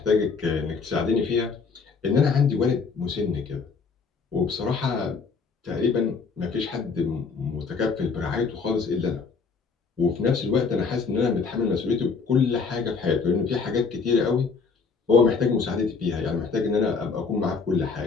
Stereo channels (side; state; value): right; quieter; 5.0 dB